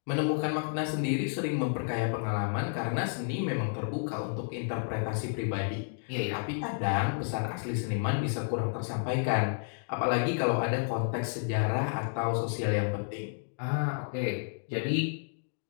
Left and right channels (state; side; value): silent; right; digital silence